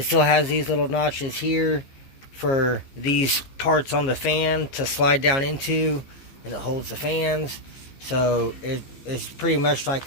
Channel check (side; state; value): right; late; 15 ms